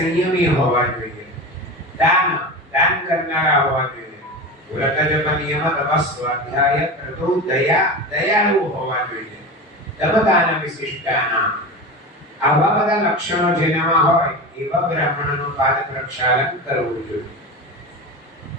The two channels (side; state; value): both; normal; correlation 0.26